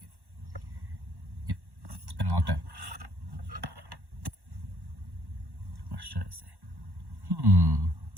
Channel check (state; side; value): late; left; 1.1 ms